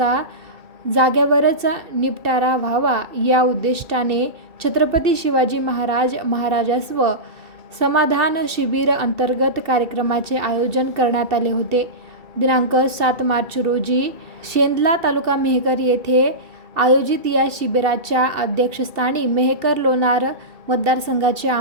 जागेवरच निपटारा व्हावा या उद्दिष्टाने छत्रपती शिवाजी महाराजस्व समाधान शिबिर अंतर्गत कार्यक्रमाचे आयोजन करण्यात आले होते. दिनांक 7 मार्च रोजी शेंदला तालुका मेहकर येथे आयोजित या शिबिराच्या अध्यक्षस्थानी मेहकर लोणार मतदारसंघाचे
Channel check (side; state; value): left; late; 2.7 ms